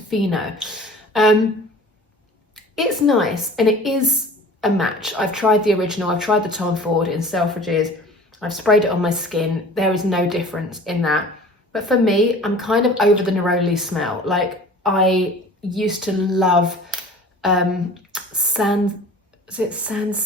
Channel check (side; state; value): both; normal; correlation 0.44